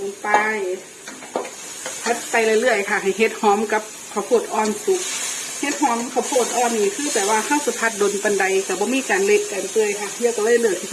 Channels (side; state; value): both; identical; correlation 1.00